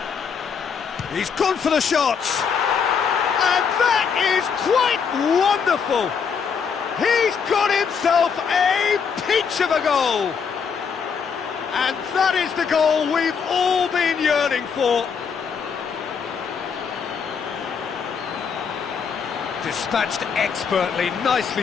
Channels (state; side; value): quieter; right; 6.4 dB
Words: He's gone for the shot. And that is quite wonderful. He's got himself a peach of a goal. And that is the goal we've all been yearning for. Dispatched expertly,